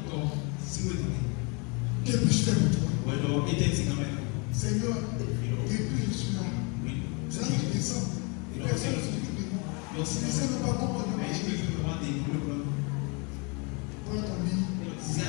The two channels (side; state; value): right; quieter; 32.3 dB